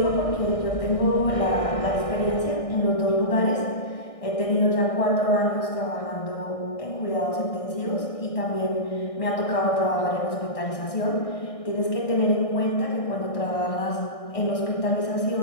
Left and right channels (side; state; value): right; late; 1.6 ms